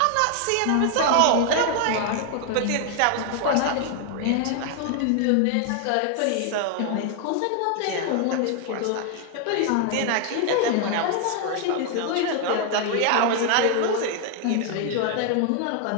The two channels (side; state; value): both; different; correlation 0.00